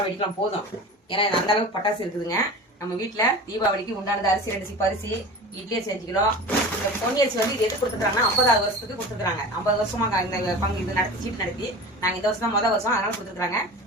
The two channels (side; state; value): both; normal; correlation 0.34